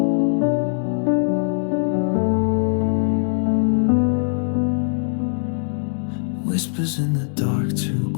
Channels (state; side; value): silent; right; digital silence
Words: Whispers in the dark, too